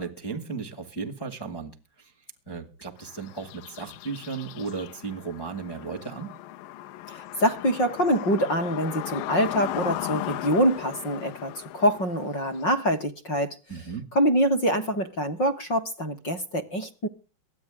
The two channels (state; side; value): late; right; 5.5 ms